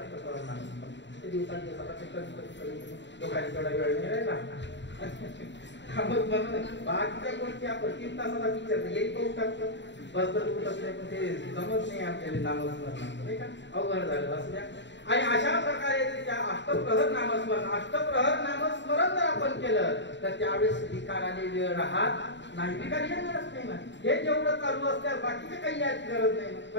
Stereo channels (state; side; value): late; right; 0.52 ms